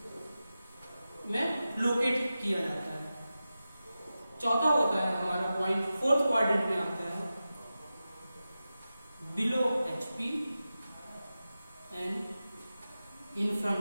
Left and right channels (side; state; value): both; inverted; correlation -0.93